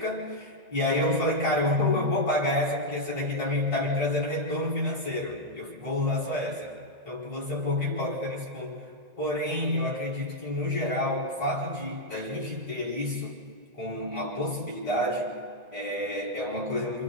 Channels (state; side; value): late; left; 1.9 ms